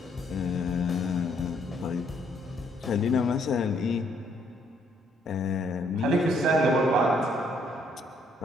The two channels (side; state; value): both; normal; correlation 0.68